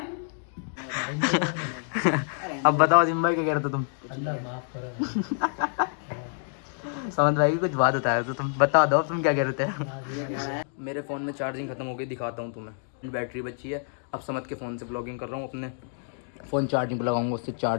अब बताओ अजीम भाई क्या कह रहे थे तुम? अल्लाह माफ करो। समझ भाई कुछ बात बताया तो तुम बता दो तुम क्या कह रहे थे। मेरे फ़ोन में चार्जिंग खत्म हो गई, दिखाता हूँ तुम्हें। बैटरी बची है। अब समझ के फ़ोन से ब्लॉगिंग कर रहा हूँ, अपने फ़ोन चार्जिंग पर लगाऊंगा। उससे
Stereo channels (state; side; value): silent; right; 60 dB below the other